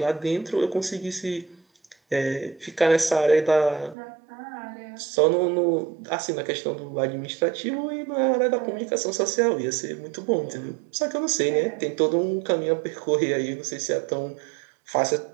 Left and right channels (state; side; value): drops out; left; at 4.0 s